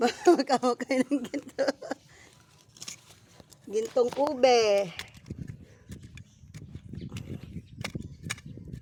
ng ginto. Gintong ube.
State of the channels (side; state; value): both; identical; correlation 1.00